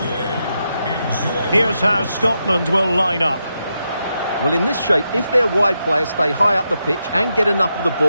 Enjoy. Here's how Scotland will line up. Well, in this shape, if their wide players stay high up the pitch and get enough of the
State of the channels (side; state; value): both; inverted; correlation -0.85